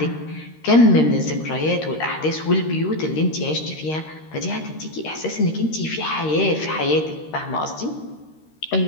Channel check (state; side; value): late; right; 13 ms